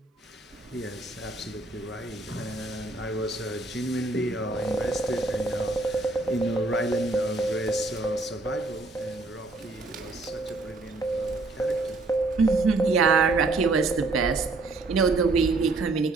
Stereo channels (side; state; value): left; quieter; 3.2 dB